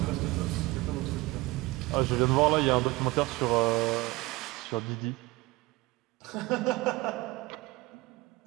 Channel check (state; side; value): quieter; left; 21.4 dB